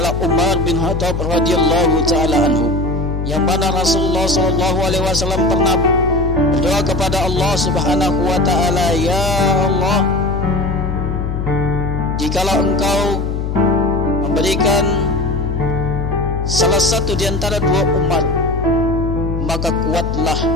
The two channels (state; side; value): noise; left; hum, 2 dB below the sound